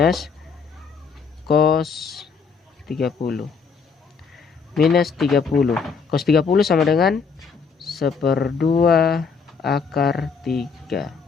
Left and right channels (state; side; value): quieter; right; 5.5 dB